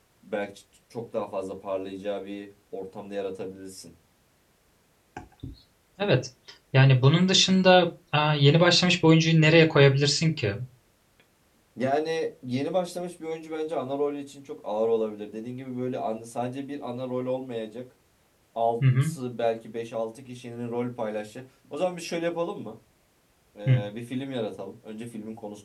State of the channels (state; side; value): identical; both; correlation 1.00